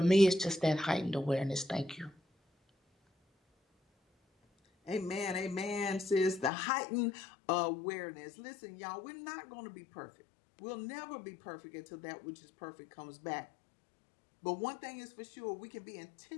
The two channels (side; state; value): right; drops out; at 6.5 s